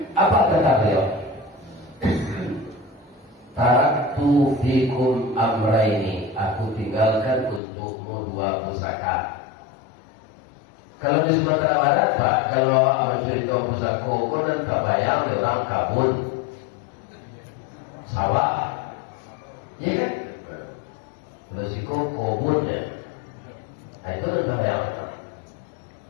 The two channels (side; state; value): right; drops out; at 7.6 s